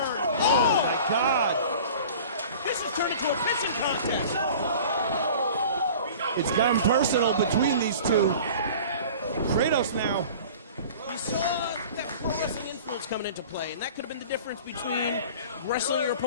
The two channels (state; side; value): inverted; both; correlation -0.42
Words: Oh my God. This has turned into a pissing contest. It's gotten personal between these two. Kratos now. We saw that pro wrestling influence coming into play, and that could have been the difference between wrestling your